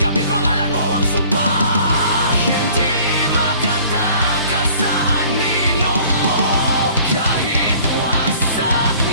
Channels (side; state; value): both; inverted; correlation -0.52